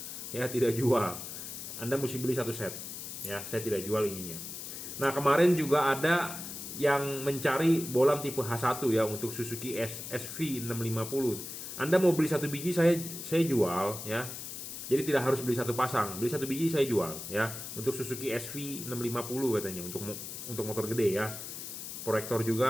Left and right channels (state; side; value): noise; left; hiss, 8 dB below the sound